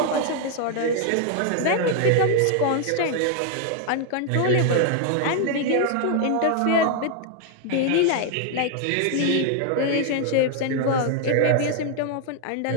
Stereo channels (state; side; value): different; both; correlation 0.00